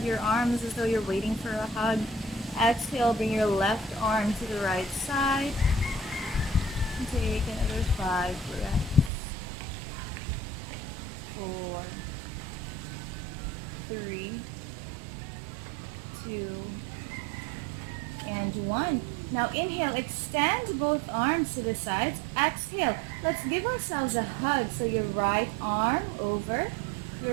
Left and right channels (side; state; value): left; drops out; at 9.1 s